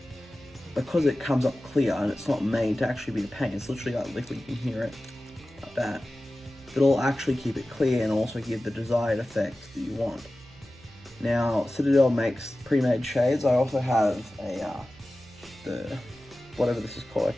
because it comes up clear and it's not made to actually be a paint, it's literally like liquid, you can hear it, like that. It'll actually keep it clear and also give the desired effect that you want. Now, Citadel makes pre-made shades. I also have the whatever this is called. I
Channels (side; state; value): right; noise; hum, 25 dB below the sound